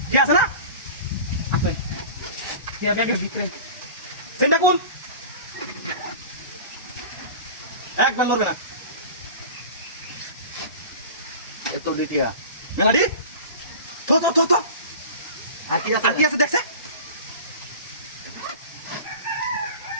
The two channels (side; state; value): both; inverted; correlation -0.36